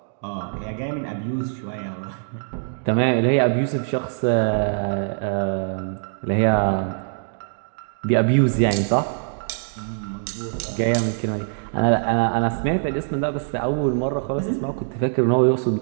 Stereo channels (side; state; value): left; silent; digital silence